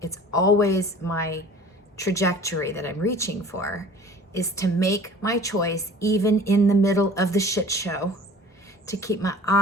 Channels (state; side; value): normal; both; correlation 0.46